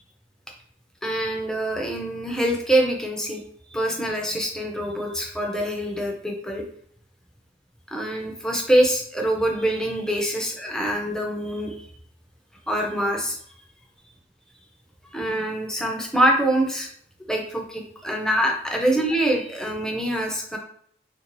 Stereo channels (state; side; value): normal; both; correlation 0.68